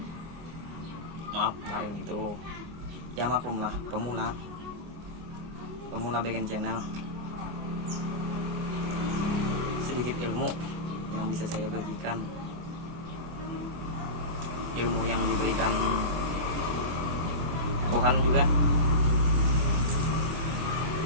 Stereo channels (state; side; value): late; left; 24 ms